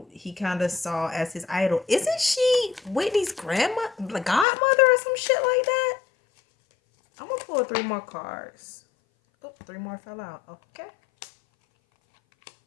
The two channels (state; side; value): drops out; right; at 4.5 s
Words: he kind of saw as his idol. Isn't she Whitney's grandma, the godmother or some shit like that? I'm gonna pull 3 more cards. Oh, 3 more fell out. Okay.